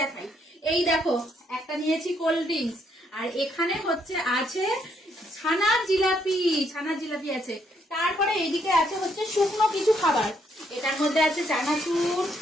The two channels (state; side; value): normal; both; correlation 0.73